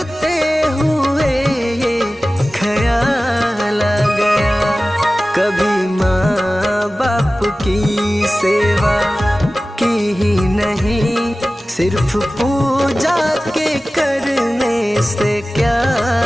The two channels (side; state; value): both; normal; correlation 0.96